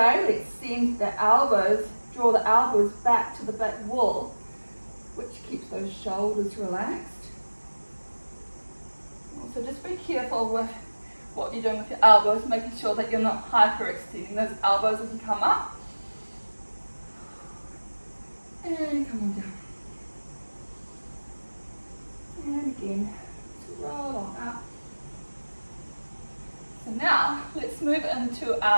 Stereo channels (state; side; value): inverted; both; correlation -1.00